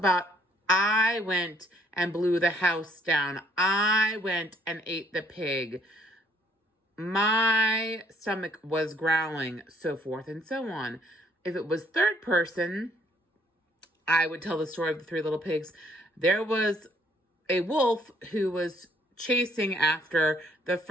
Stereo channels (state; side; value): normal; both; correlation 0.64